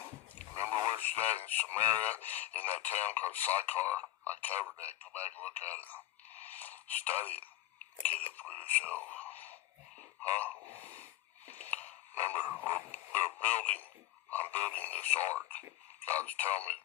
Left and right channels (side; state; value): right; quieter; 14.9 dB